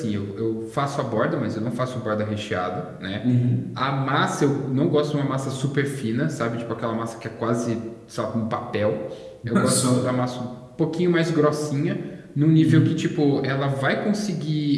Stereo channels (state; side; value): identical; both; correlation 1.00